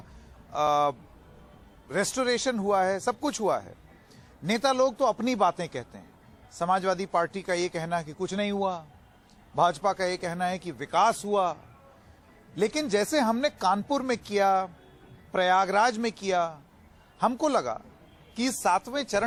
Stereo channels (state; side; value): identical; both; correlation 1.00